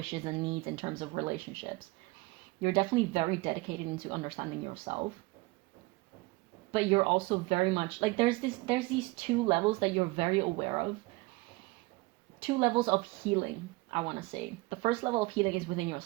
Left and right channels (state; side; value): quieter; left; 22.8 dB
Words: and needs in terms of relationships. You're definitely very dedicated into understanding yourself. But you're also very much like there's these two levels that you're very aware of. Two levels of healing, I want to say. The first level of healing is within